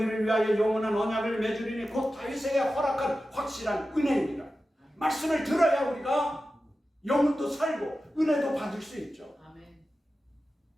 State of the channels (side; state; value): both; normal; correlation 0.93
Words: 위하여 영원한 언약을 맺으리니 곧 다윗에게 허락한 확실한 은혜입니다. 말씀을 들어야 우리가 영혼도 살고 은혜도 받을 수 있죠. 아멘.